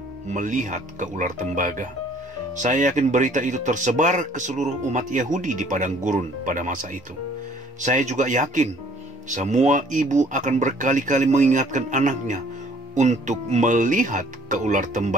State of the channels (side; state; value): both; normal; correlation 0.57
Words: melihat ke ular tembaga. Saya yakin berita itu tersebar ke seluruh umat Yahudi di padang gurun pada masa itu. Saya juga yakin semua ibu akan berkali-kali mengingatkan anaknya untuk melihat ke ular